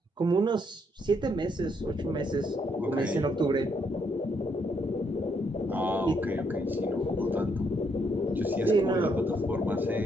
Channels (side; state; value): both; normal; correlation 0.74